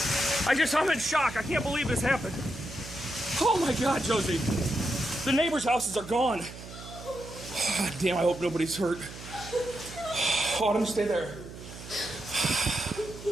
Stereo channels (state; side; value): noise; right; hum, 13 dB below the sound